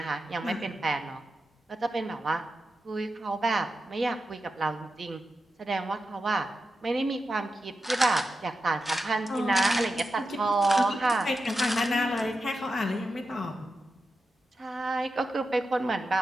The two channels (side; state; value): both; normal; correlation 0.90